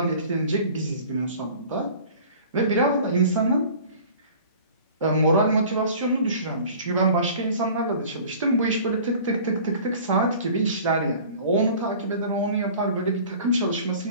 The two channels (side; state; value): both; inverted; correlation -0.45